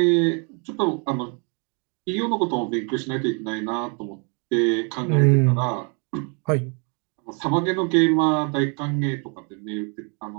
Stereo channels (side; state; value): left; quieter; 36.8 dB